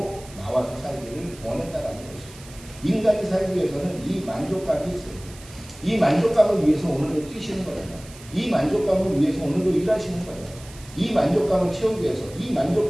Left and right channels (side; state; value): right; noise; hiss, 20 dB below the sound